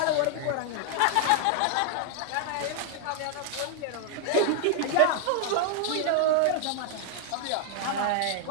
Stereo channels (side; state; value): both; different; correlation 0.00